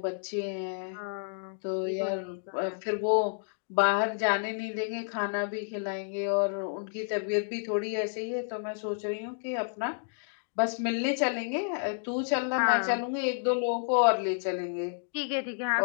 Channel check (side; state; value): right; silent; digital silence